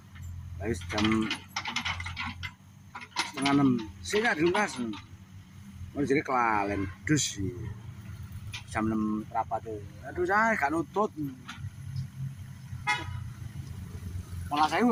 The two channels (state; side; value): identical; both; correlation 1.00